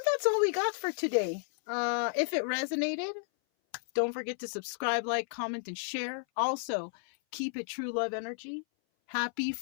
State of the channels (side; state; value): right; silent; 56 dB below the other